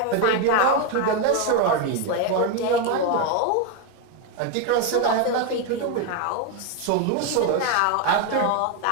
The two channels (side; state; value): both; different; correlation 0.02